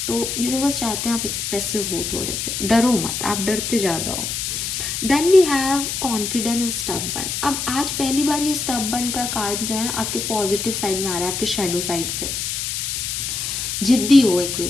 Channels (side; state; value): left; noise; hiss, 3 dB below the sound